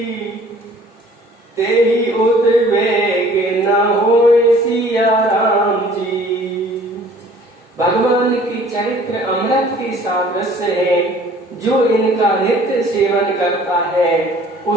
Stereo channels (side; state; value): both; normal; correlation 0.53